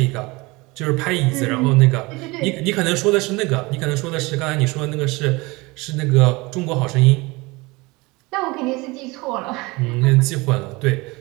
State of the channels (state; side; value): quieter; left; 23.8 dB